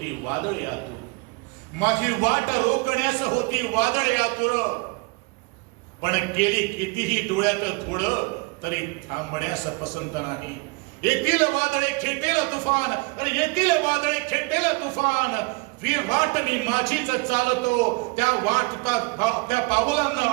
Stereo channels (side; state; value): left; quieter; 28.3 dB